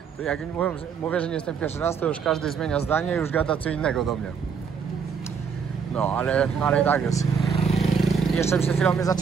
To jak mówię, że nie jestem pierwszy raz, to już każdy zmienia zdanie i już gada co innego do mnie. No, ale i tak jest. I jeszcze przed chwilą mnie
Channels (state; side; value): quieter; left; 6.3 dB